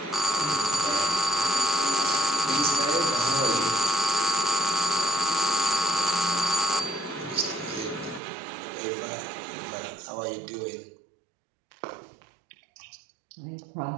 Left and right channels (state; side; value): drops out; left; at 8.2 s